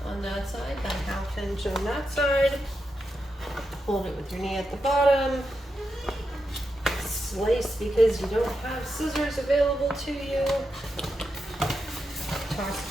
on that side, about a ½ inch on that side. Hold it with your knee at the bottom. Slice because you don't have scissors available to you. Toss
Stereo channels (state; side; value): normal; both; correlation 0.87